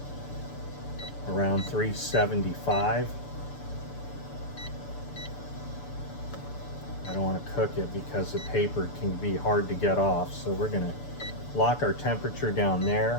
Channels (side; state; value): right; late; 6.9 ms